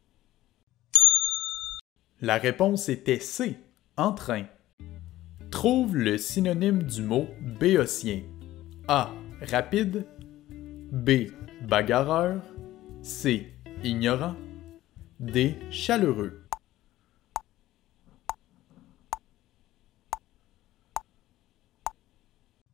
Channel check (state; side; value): quieter; right; 15.5 dB